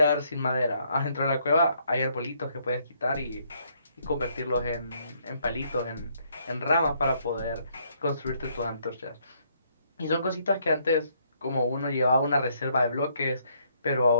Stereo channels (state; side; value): inverted; both; correlation -0.70